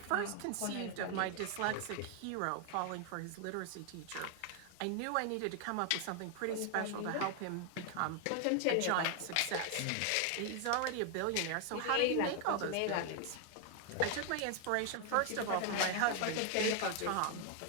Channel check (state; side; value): different; both; correlation 0.00